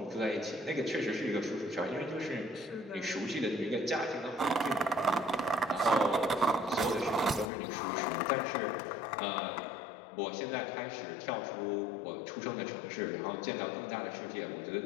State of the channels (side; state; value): right; drops out; at 7.5 s